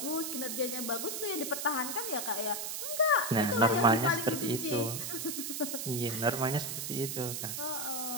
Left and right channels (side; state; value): right; noise; hiss, 4 dB below the sound